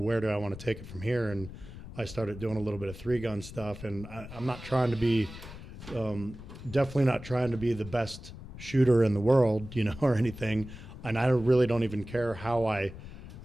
where do I want to take it from here? And I started doing a little bit of 3-gun stuff, and I'm not trying to be, definitely not trying to be the best shooter in the world, you know, or anything. And I really don't even care how I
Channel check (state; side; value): noise; left; rumble, 13 dB below the sound